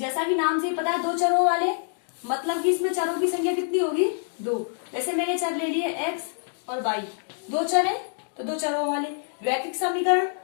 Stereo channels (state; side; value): silent; right; digital silence